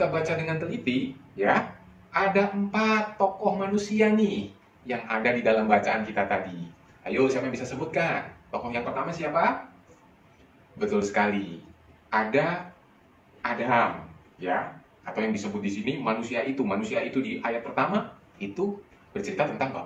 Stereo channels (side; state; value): both; identical; correlation 1.00